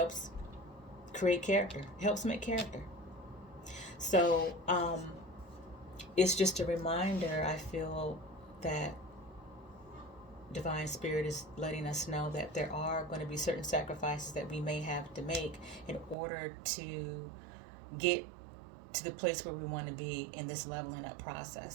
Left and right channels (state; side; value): drops out; left; at 16.2 s